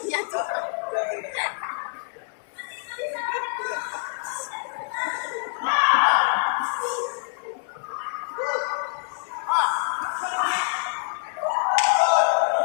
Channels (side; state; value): right; silent; 61 dB below the other